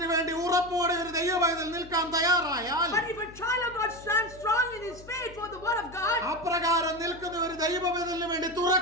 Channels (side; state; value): left; noise; hum, 19 dB below the sound